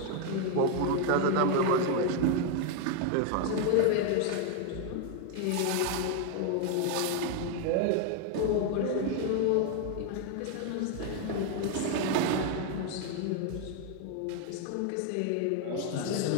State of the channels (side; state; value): both; different; correlation 0.00